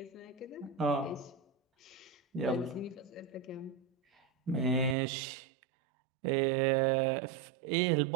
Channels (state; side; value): drops out; left; at 5.0 s